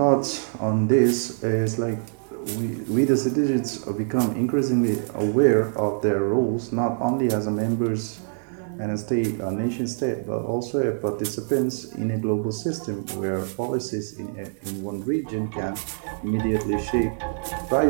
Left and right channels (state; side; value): silent; left; 59 dB below the other